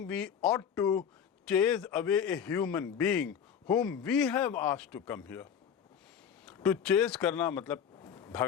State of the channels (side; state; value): right; quieter; 8.0 dB